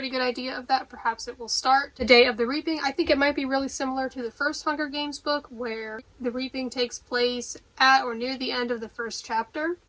good idea of that. Perhaps it will start the day of the reaping. I think it might be really similar to the first Hunger Games book, where the reaping takes place at or near the end of the first chapter.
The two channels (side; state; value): both; identical; correlation 1.00